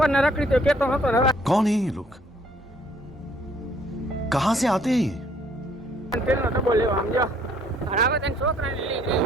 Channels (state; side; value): normal; both; correlation 0.63